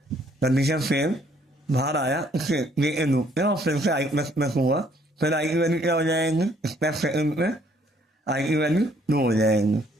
कंडीशन फेल बाहर आया, उससे ये लूप और फिर से आई प्लस प्लस हुआ, फिर आई की वैल्यू क्या हो जाएंगी स्टेप सेकंड में, आई की वैल्यू 2 हो जाएंगी,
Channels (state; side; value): normal; both; correlation 0.64